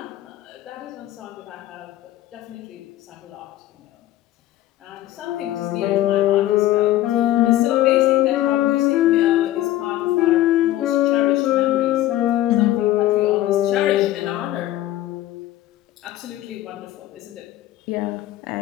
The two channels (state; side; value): quieter; right; 14.4 dB